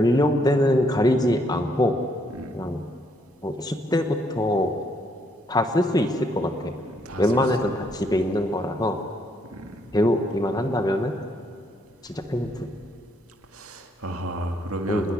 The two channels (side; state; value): both; normal; correlation 0.71